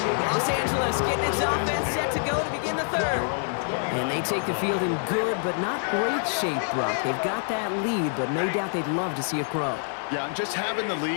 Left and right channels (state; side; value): silent; right; 61 dB below the other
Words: Los Angeles getting its offense set to go to begin the 3rd. And they take the field in good but not great shape, Brock. They've got that lead, but no doubt they'd love to see it grow. Yeah, just having the